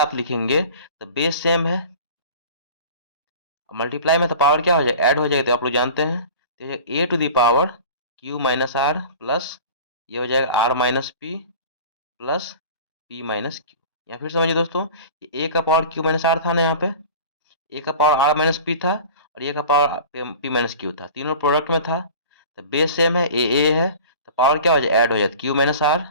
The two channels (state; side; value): inverted; both; correlation -0.39